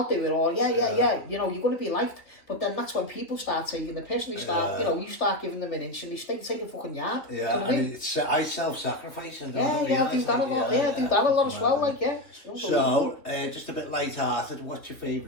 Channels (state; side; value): late; right; 3.1 ms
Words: do it, or yeah, you know, you're going to be liked. But then that's when people start taking the piss, and they start, you know, you start giving them an inch, and they take a fucking yard. Yeah, you know and it's, I self-sacrifice. And I do that a lot. I do that a lot as well, like, yeah. So, just a bit light-hearted, what's your